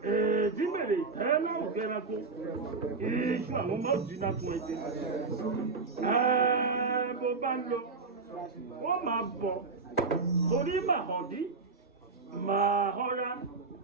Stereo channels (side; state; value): left; quieter; 4.3 dB